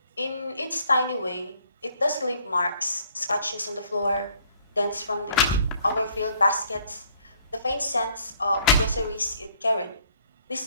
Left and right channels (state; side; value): inverted; both; correlation -0.62